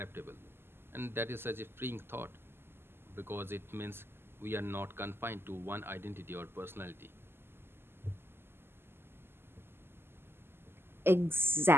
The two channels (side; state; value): left; late; 0.11 ms